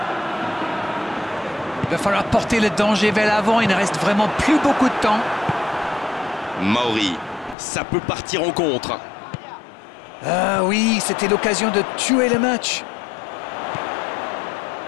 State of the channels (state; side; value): drops out; right; at 7.6 s